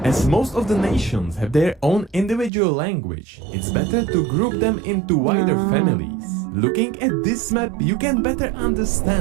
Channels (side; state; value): left; drops out; at 2.5 s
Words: As most of the nations have their own individual language, it's better to group them into wider families. Looking at this map, you can better